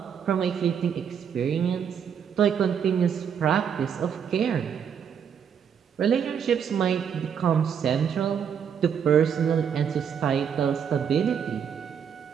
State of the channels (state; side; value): quieter; left; 7.7 dB